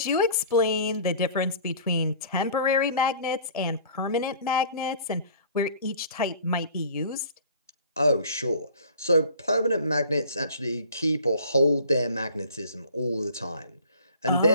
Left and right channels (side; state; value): both; inverted; correlation -0.47